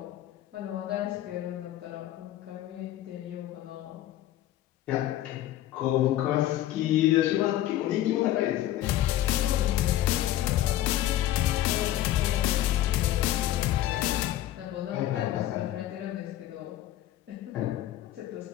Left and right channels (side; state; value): right; quieter; 13.5 dB